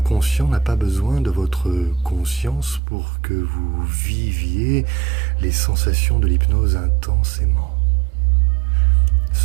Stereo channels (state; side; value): drops out; left; at 2.8 s